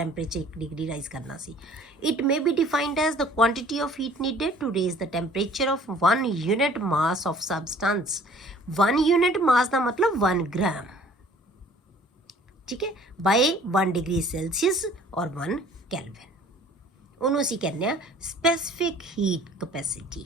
1 ਡਿਗਰੀ ਰਾਈਜ਼ ਕਰਨਾ ਸੀ। It may be defined as the quantity of heat needed to raise the temperature of 1 unit mass of substance. 1 unit mass ਦਾ ਮਤਲਬ 1 ਗ੍ਰਾਮ, ਠੀਕ ਹੈ, by 1 degree Celsius or 1 Kelvin। ਉਹਨੂੰ ਅਸੀਂ ਕਹਿੰਦੇ ਆ specific heat capacity.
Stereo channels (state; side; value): normal; both; correlation 0.53